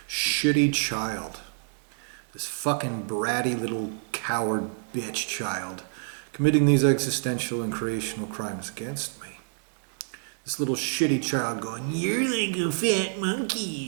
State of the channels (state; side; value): silent; left; digital silence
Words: shitty child, this fucking bratty little coward bitch child, committing these existential and creational crimes against me. This little shitty child going, "You're like a fat